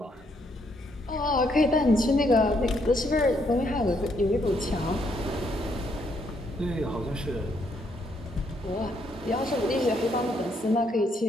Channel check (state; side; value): normal; both; correlation 0.73